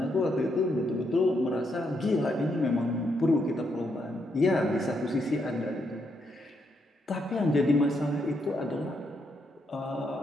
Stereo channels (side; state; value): both; normal; correlation 0.78